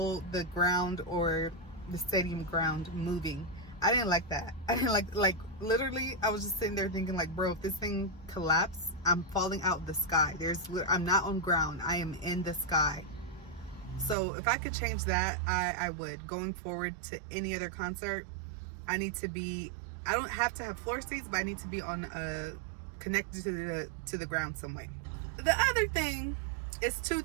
the ground or the stadium ground moving. I didn't like that. I didn't like literally I was just sitting there thinking like, bro, if this thing collapsed, I'm falling out of the sky. I'm not on ground, I am in the sky. So if I could change that, I would. Going forward to any other concert, I don't have to have floor seats, but I need to be on connected to the ground some way. The other thing is two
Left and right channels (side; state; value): left; drops out; at 14.2 s